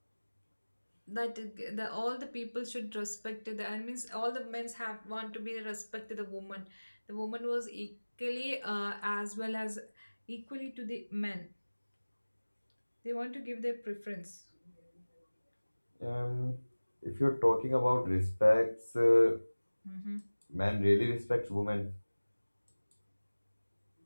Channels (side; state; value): both; inverted; correlation -1.00